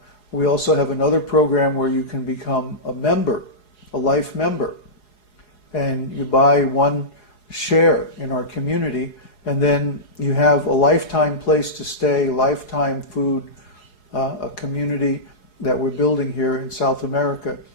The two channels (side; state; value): right; late; 4.8 ms